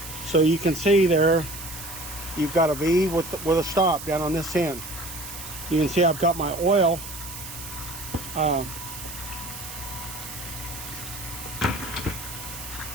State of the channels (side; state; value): right; noise; hiss, 11 dB below the sound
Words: So you can see there, you've got a V with a stop down on this end. You can see I've got my oil